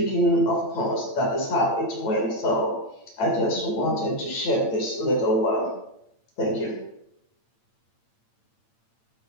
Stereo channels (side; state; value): right; late; 8.8 ms